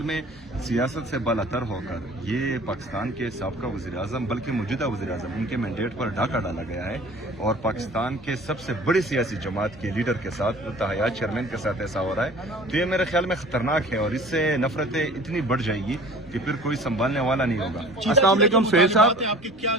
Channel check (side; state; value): both; normal; correlation 0.45